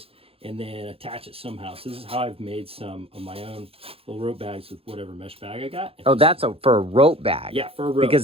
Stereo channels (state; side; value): late; left; 0.27 ms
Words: and then attach it somehow. So this is how I've made some of my own little rope bags with whatever mesh bag I got. Oh, that's for a rope bag. Yeah, for a rope.